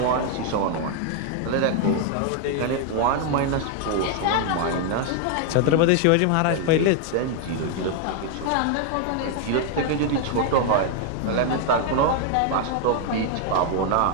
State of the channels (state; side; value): different; both; correlation 0.00